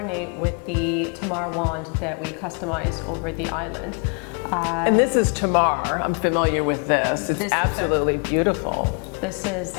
with the Tamar wand that we customized over the island. And this is Tamar. I'm familiar with this. It's absolutely beautiful. This is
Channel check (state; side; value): quieter; right; 38.5 dB